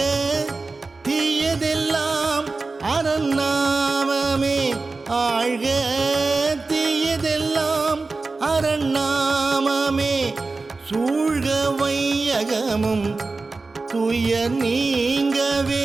தீயதெல்லாம் அரண்நாமமே, ஆழ்க தீயதெல்லாம் அரண்நாமமே. சூழ்க வையகமும் துயர்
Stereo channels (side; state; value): left; quieter; 3.7 dB